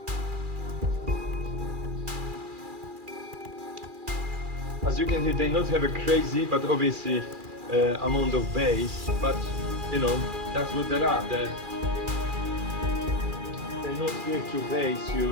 As you can hear, they not have a crazy, but obviously amount of bass, but you know, that's what they are. They're not here to bass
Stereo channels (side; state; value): left; late; 2.4 ms